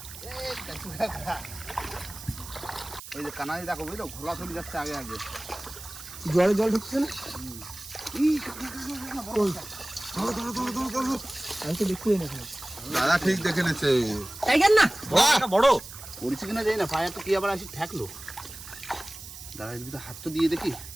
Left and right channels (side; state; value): right; noise; hiss, 13 dB below the sound